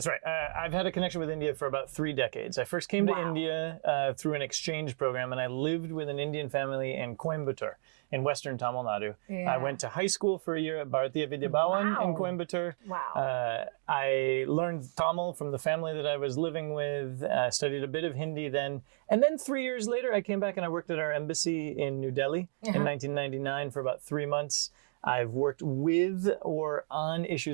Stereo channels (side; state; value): left; silent; digital silence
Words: right. I've had a connection with India for about 3 decades. I first came to India through an exchange program, and I lived with an Indian family in Coimbatore in western Tamil Nadu. I went to high school for a year at Bharatiya Vidya Bhavan in Coimbatore. I learned Tamil from the family that I was living with, studied a bit of Hindi then. And then 3 years later, I came back and I worked at our embassy in New Delhi in 1999 for about 3 months. I've worked with or on